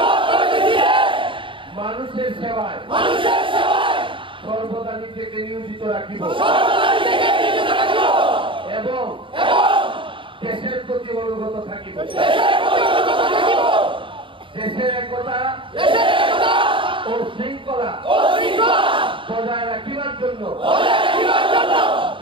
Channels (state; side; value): late; left; 0.25 ms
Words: মানুষের সেবায় সর্বদা নিজেকে নিয়োজিত রাখিব এবং দেশের প্রতি অনুগত থাকিব। দেশের একতা ও শৃঙ্খলা বজায় রাখিবার জন্য